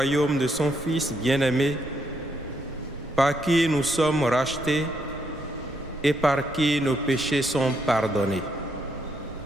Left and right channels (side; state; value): both; normal; correlation 0.76